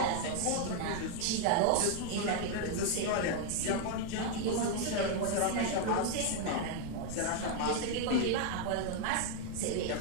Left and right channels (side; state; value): both; different; correlation 0.01